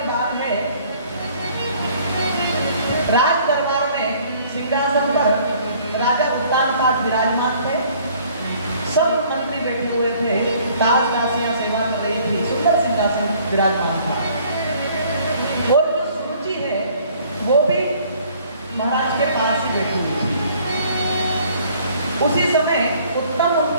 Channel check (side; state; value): both; inverted; correlation -0.58